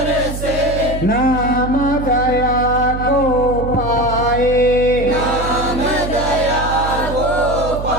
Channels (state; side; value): noise; right; hum, 7 dB below the sound